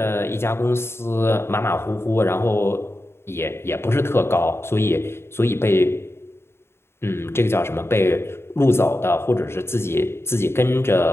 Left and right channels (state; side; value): late; right; 0.12 ms